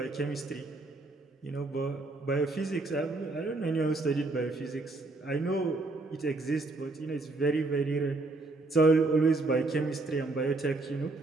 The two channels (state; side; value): quieter; left; 3.2 dB